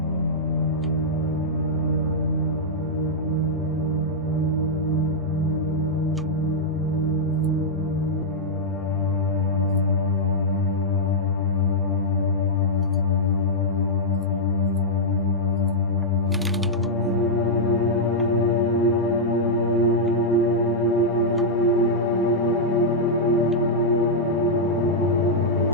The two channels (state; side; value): normal; both; correlation -0.07